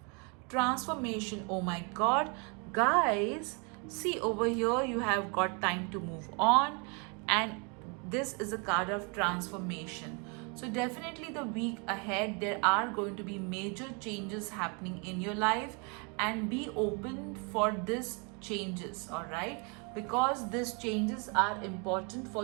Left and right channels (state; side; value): quieter; left; 33.8 dB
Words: Transformation. Oh my god, guys, see over here you have got time to move on, and this is a card of transformation. So definitely the week ahead there are going to be major changes happening in your life, and be open for this changes, all right, because these changes are important